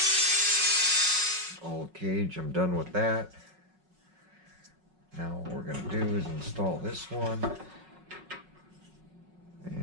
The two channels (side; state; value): left; late; 5.4 ms